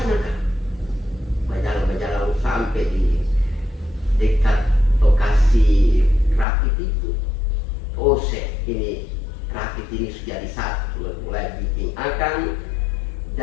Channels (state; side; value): drops out; right; at 6.5 s